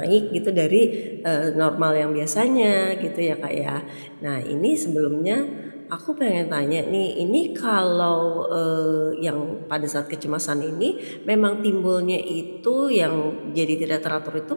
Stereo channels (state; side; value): inverted; both; correlation -1.00